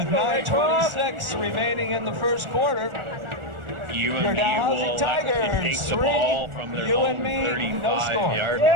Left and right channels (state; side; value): late; left; 1.4 ms